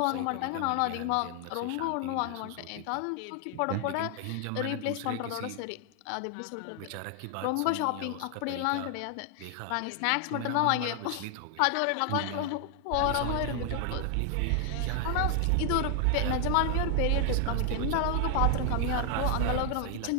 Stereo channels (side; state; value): both; different; correlation 0.00